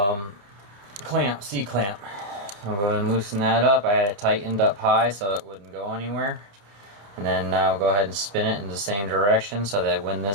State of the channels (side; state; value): left; late; 29 ms